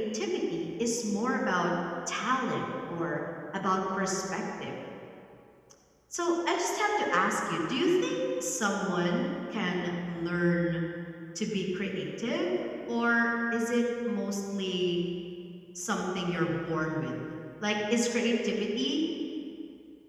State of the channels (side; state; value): both; identical; correlation 1.00